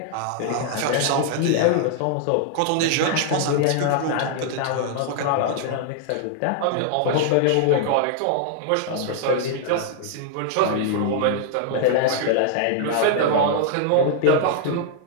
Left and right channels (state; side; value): different; both; correlation -0.01